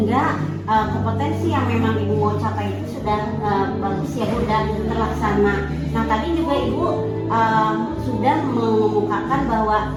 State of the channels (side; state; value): both; identical; correlation 1.00